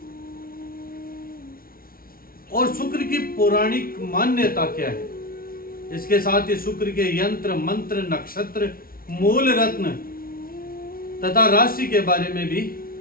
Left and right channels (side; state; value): right; late; 0.43 ms